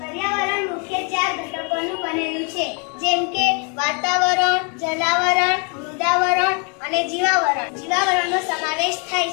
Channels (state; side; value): quieter; right; 35.8 dB